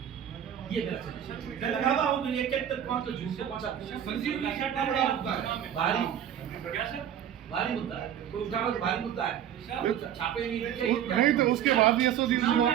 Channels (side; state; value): left; quieter; 9.9 dB